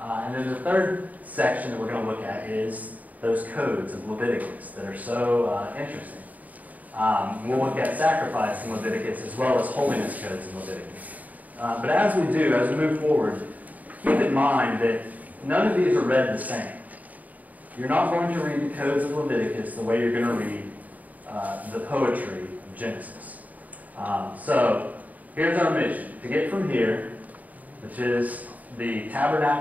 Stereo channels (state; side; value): late; left; 0.075 ms